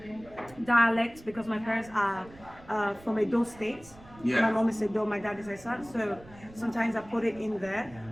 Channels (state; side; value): noise; right; rumble, 22 dB below the sound